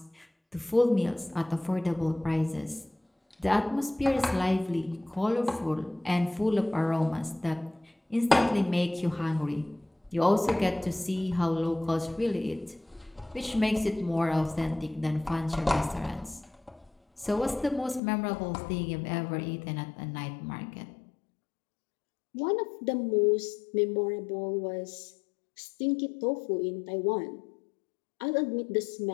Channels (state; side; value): drops out; right; at 18.0 s